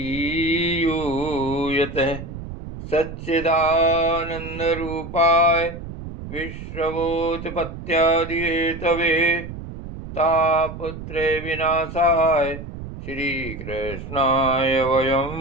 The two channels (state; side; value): noise; right; rumble, 10 dB below the sound